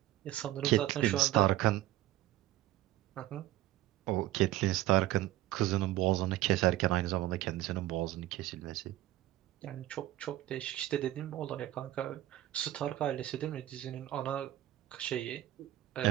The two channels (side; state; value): left; quieter; 15.1 dB